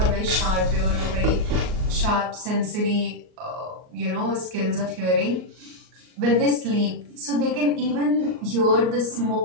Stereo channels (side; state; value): left; late; 38 ms